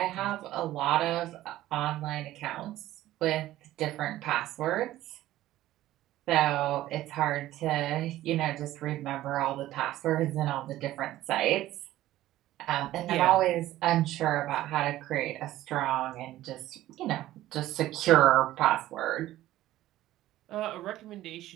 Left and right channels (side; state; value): left; quieter; 14.8 dB